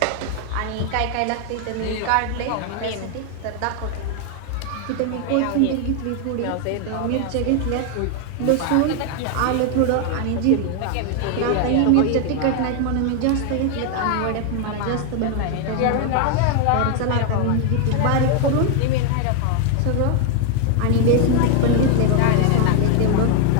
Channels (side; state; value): both; different; correlation 0.01